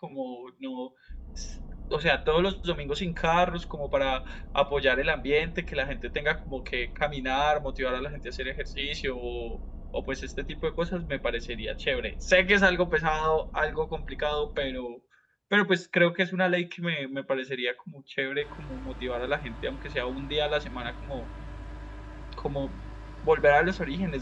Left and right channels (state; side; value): identical; both; correlation 1.00